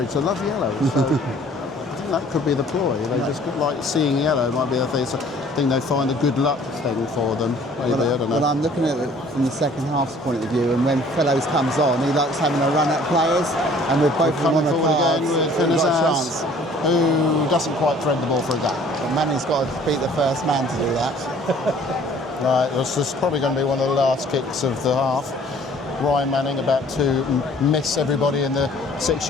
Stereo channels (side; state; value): both; normal; correlation 0.54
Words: they love yellow. So I think that could be the ploy. They just like seeing yellow might be the thing. So I think they find a good luck thing for them. Maybe, I don't know. Well, I'm looking at it from the second half's point of view, and when Fellows comes on, he likes having a run at players, and with both of them on the cards, we've got a chance. Who doesn't quite thread the ball for a gap. But Manning's got to beat the first man to do that. Right, this is probably going to be one of the last kicks of the half. Ryan Manning about to miss everybody in the